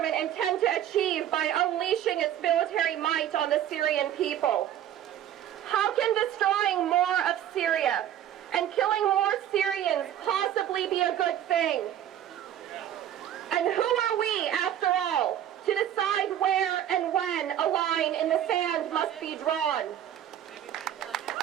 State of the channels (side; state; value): left; quieter; 11.0 dB